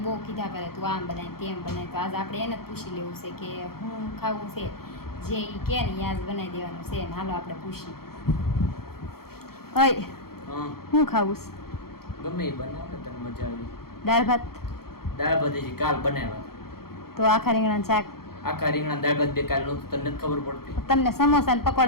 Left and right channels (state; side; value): late; right; 0.94 ms